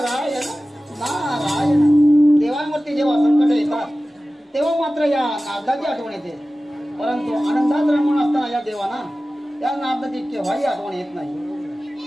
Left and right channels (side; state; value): both; normal; correlation 0.96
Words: नारायण. देवांवरती जेव्हा संकट येतात तेव्हा मात्र या नारदाची आठवण येते. परंतु आनंदात रमून असताना या देवाना या नारदाची केव्हाही आठवण येत नाही.